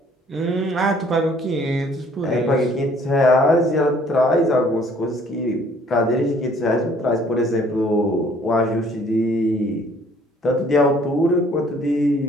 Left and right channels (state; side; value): normal; both; correlation 0.59